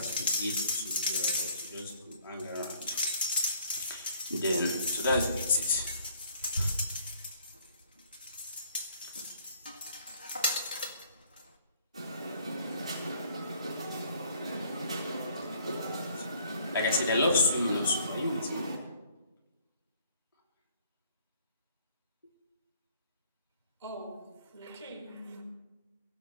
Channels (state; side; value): inverted; both; correlation -0.60